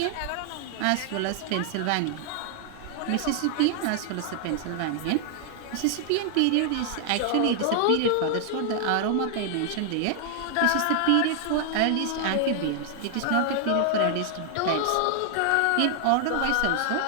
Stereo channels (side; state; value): both; different; correlation 0.00